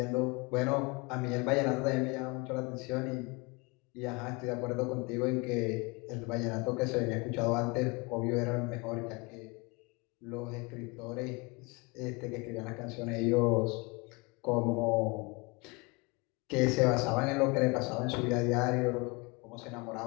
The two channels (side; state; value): right; quieter; 27.7 dB